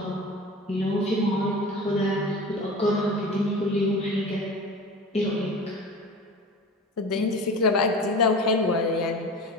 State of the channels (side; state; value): both; normal; correlation 0.35